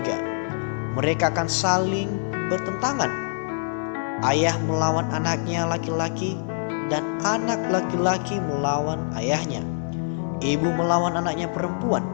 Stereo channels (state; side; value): silent; right; 62 dB below the other